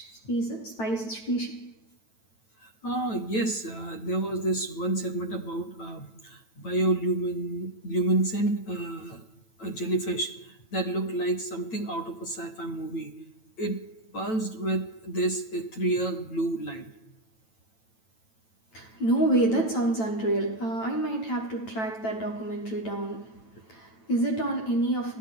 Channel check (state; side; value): late; right; 9.0 ms